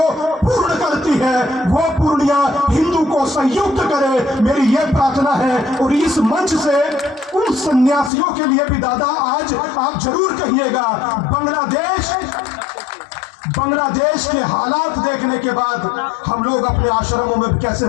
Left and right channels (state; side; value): drops out; right; at 8.1 s